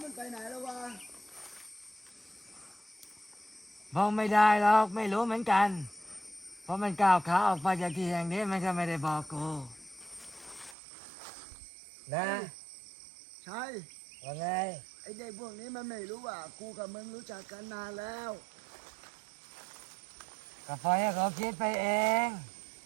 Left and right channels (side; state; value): left; drops out; at 10.8 s